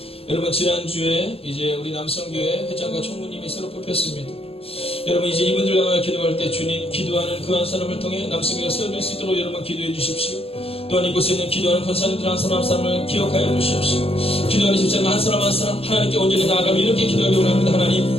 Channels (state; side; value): late; right; 0.28 ms